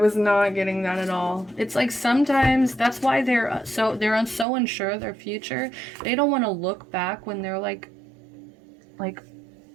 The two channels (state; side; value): drops out; left; at 4.5 s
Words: not getting that at all. It's like sometimes that's why they're so unsure of their future. They don't want to look back when they're like